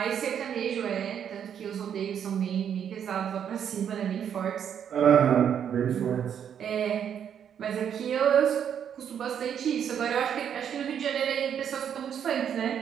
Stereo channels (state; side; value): quieter; left; 8.6 dB